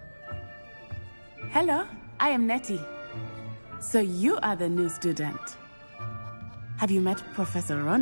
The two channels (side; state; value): both; inverted; correlation -1.00